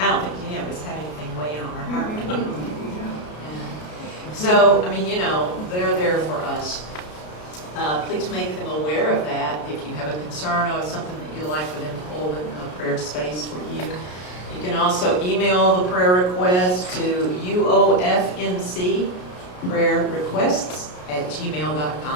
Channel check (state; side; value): late; right; 33 ms